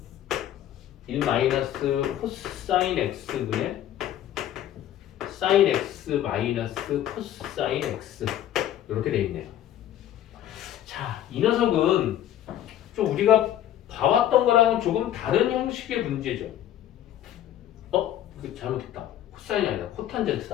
1 마이너스 코사인 x분의 사인 x 마이너스 코사인 x 이렇게 돼 있네요. 자, 이 녀석은 좀 우리가 봐왔던 거랑은 조금 다른 형식의 문제죠. 이거 잘못했다. 코사인이 아니라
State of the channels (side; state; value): right; quieter; 11.8 dB